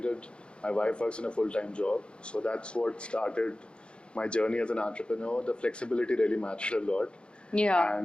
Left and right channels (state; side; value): late; right; 0.055 ms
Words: my wife works in a full-time job. So that's what started my journey as an entrepreneur. The flexibility really mattered a lot. Yeah.